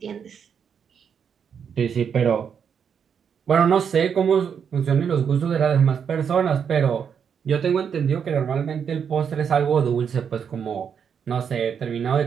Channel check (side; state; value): left; quieter; 7.3 dB